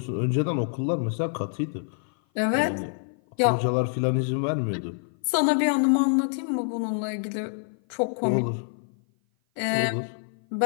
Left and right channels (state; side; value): silent; right; 56 dB below the other